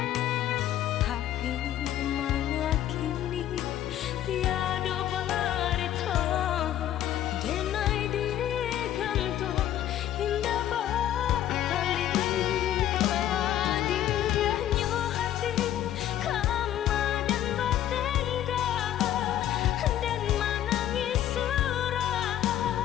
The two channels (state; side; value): quieter; right; 11.8 dB